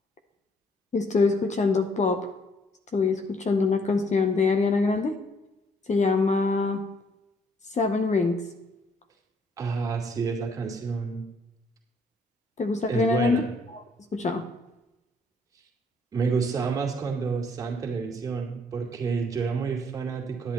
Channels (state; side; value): normal; both; correlation 0.66